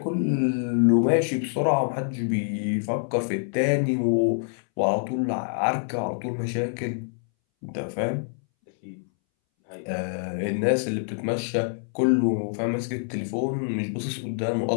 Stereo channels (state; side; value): silent; right; 61 dB below the other